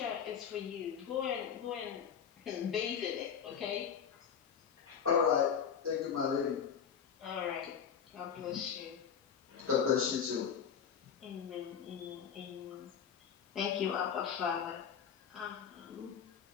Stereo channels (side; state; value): right; quieter; 7.6 dB